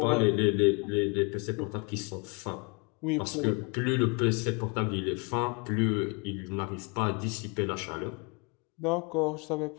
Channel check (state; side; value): quieter; right; 32.3 dB